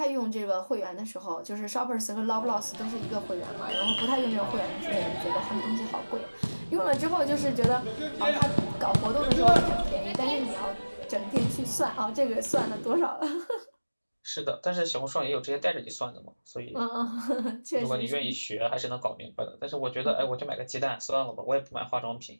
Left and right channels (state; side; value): inverted; both; correlation -1.00